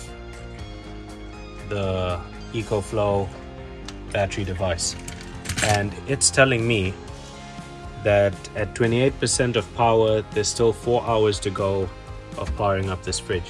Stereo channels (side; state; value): both; identical; correlation 1.00